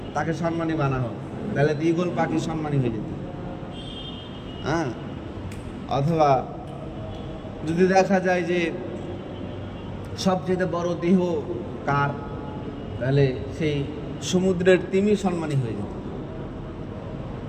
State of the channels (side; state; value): both; identical; correlation 1.00